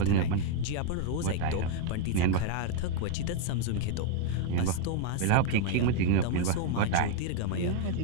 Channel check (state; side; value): different; both; correlation 0.00